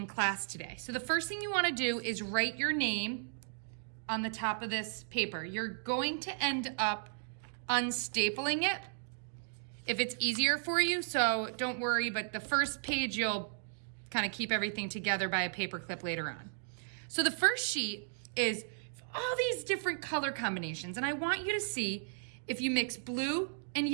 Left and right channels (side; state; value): left; silent; digital silence